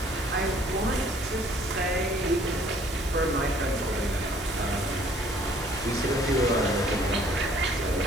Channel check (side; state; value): both; normal; correlation 0.59